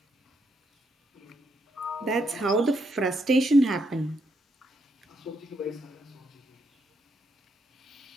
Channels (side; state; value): both; normal; correlation 0.78